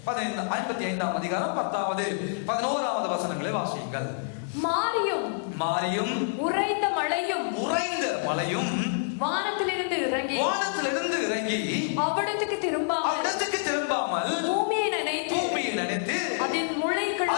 55ஆம் அதிகாரம் 10வது 11வது வசனங்களை வாசியுங்கள். மாரியும் மாரியும் உறைந்த மழையும் வானத்திலிருந்து இறங்கி அவ்விடத்துக்கு திரும்பாமல் பூமியை நனைத்து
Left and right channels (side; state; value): right; silent; 57 dB below the other